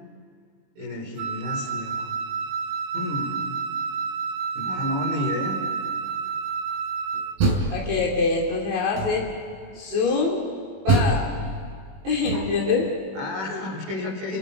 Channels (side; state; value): left; late; 21 ms